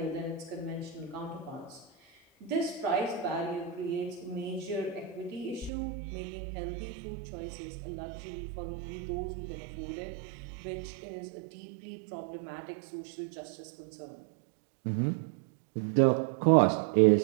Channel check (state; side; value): drops out; left; at 5.7 s